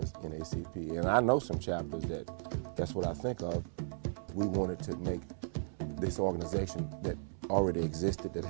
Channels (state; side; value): silent; left; 54 dB below the other